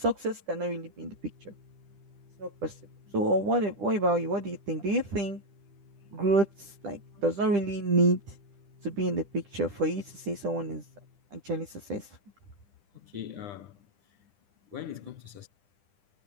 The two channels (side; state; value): left; late; 10 ms